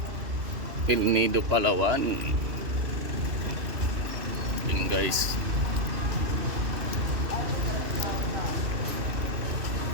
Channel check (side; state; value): left; late; 2.9 ms